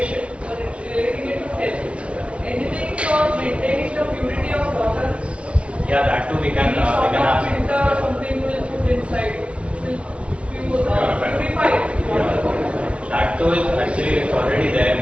but relating it to health. Anything for maintaining the purity of water? Yeah, that too we can have. Filter, something will put inside. Will purify it. That too is actually already there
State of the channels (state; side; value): late; left; 0.061 ms